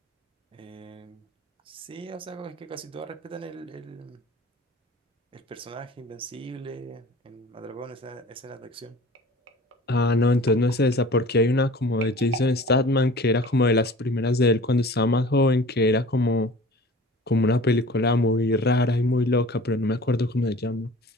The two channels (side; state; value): both; normal; correlation 0.43